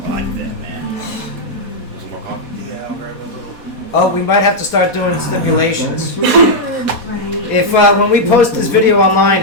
like that, man. Yeah, I'll grab a little. Oh, we might have to start doing stipulations. If when we post this video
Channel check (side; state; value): left; late; 4.1 ms